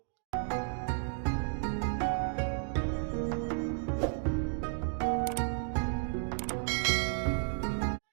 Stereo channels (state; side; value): silent; left; 56 dB below the other